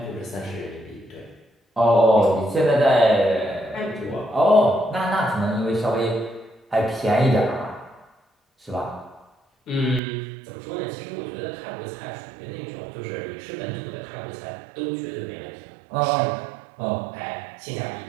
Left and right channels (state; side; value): drops out; left; at 10.0 s